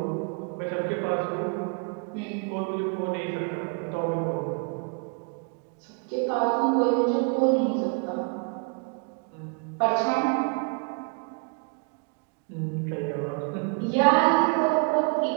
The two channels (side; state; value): left; quieter; 38.4 dB